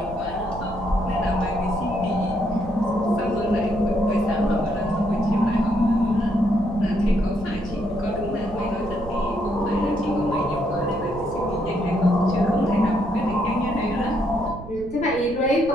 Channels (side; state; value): right; noise; rumble, 14 dB below the sound